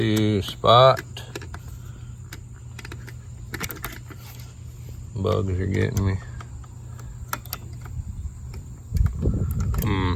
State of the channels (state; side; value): identical; both; correlation 1.00